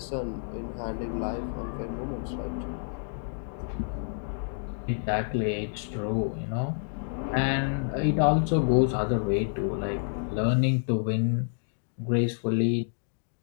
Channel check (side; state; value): right; silent; digital silence